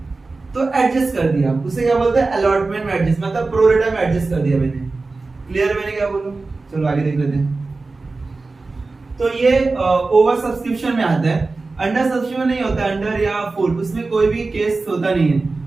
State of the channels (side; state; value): left; quieter; 3.7 dB